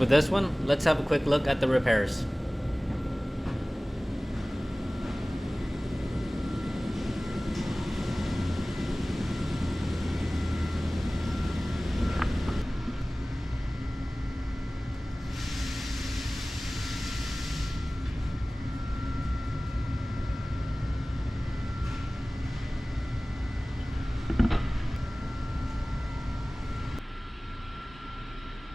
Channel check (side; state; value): both; normal; correlation 0.98